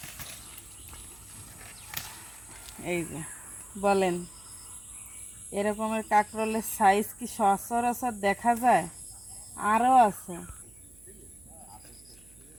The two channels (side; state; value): right; noise; hum, 25 dB below the sound